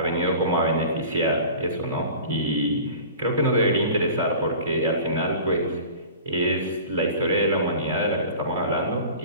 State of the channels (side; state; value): both; inverted; correlation -0.41